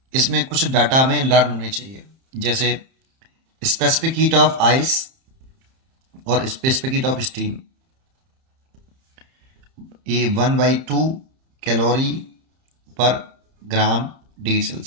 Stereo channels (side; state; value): left; late; 30 ms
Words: इसमें कुछ डाटा हमें लर्न होने चाहिए, जैसे स्पेसिफिक हीट ऑफ आइस और स्पेसिफिक हीट ऑफ स्टीम। ये 1/2 calorie per gram degree